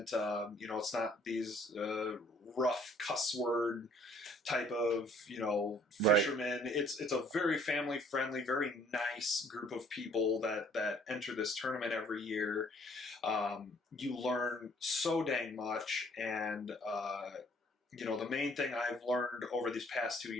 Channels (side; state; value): both; normal; correlation 0.60